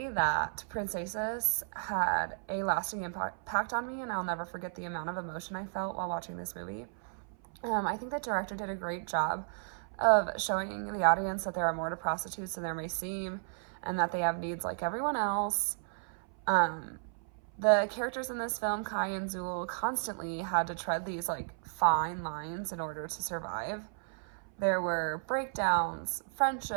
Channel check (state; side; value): silent; left; 55 dB below the other